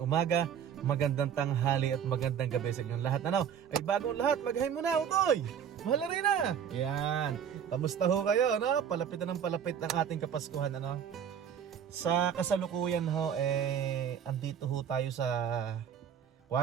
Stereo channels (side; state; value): left; quieter; 8.4 dB